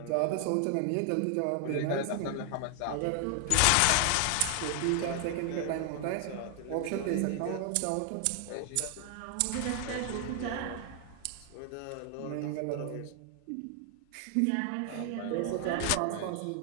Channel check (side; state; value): both; different; correlation 0.00